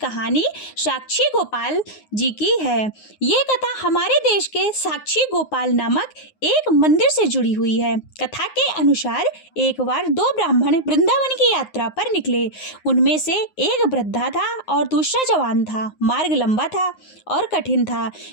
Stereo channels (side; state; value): right; late; 9.6 ms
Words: साक्षी गोपाल जी की है। ये कथा हमारे देश के साक्षी गोपाल नामक एक मंदिर से जुड़ी हुई है। कथा के अनुसार एक बार दो ब्राह्मण वृंदावन की यात्रा पर निकले। उनमें से एक वृद्धा था और दूसरा जवान था। मार्ग लंबा था और कठिन था,